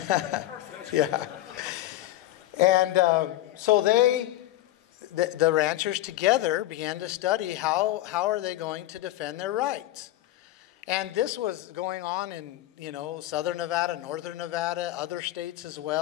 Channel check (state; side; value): quieter; right; 15.1 dB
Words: Yeah. And so the ranchers together began to study how are they going to defend their rights. And this was going on in, southern Nevada, northern Nevada, other states as